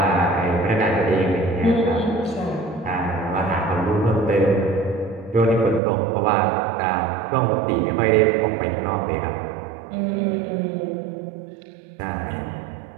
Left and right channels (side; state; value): left; drops out; at 5.8 s